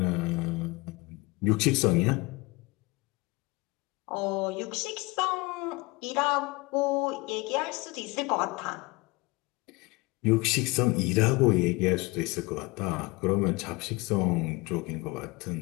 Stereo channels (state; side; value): quieter; right; 24.5 dB